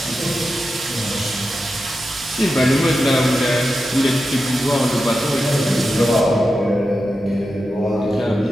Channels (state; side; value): normal; both; correlation 0.90